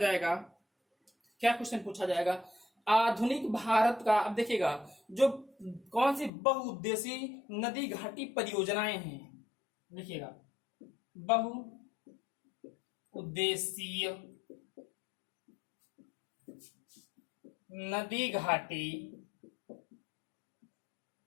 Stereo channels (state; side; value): drops out; right; at 6.3 s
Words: क्या क्वेश्चन पूछा जाएगा? आधुनिक भारत का, अब देखिएगा, जो कौन सी बहुउद्देशीय नदी घाटी परियोजनाएं हैं, देखिएगा बहु उद्देशीय नदी घाटी